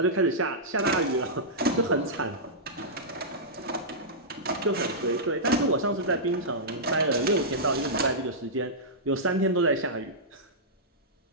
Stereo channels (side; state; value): both; normal; correlation -0.14